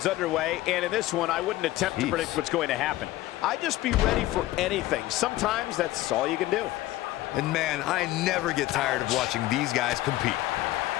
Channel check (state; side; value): quieter; right; 16.4 dB